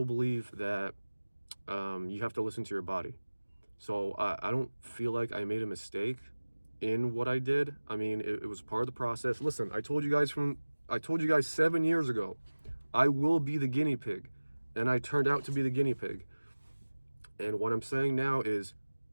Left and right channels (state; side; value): inverted; both; correlation -1.00